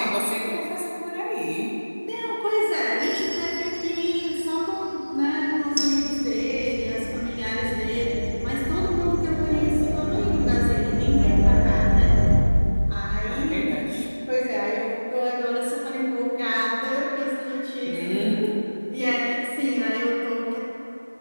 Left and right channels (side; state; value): both; inverted; correlation -1.00